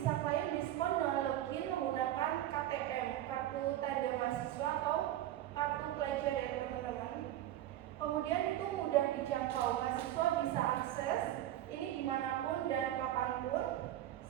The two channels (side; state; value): left; quieter; 13.2 dB